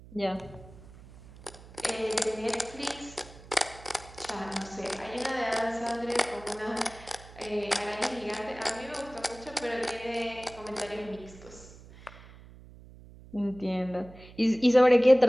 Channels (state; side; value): noise; right; hum, 19 dB below the sound